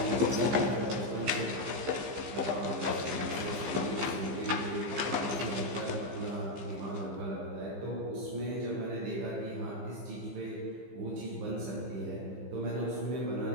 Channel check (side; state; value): left; late; 15 ms